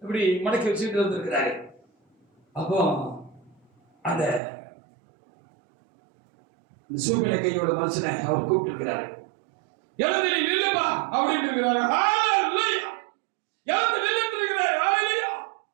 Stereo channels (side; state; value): left; drops out; at 4.4 s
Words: இப்படி மடக்கி வச்சுட்டு இருந்திருக்கிறாரு. அப்போ அந்த சூம்பின கையோட மனுஷனை அவர் கூப்பிட்டு இருக்கிறாரு. எழுந்து நீ நில்லுப்பா அப்படின்னு இருக்கிறாரு. ஹalleluya. எழுந்து நில்லுன்னு இருக்கிறாரு. ஹalleluya.